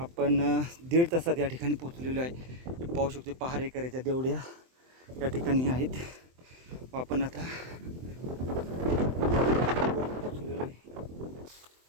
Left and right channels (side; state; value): left; late; 23 ms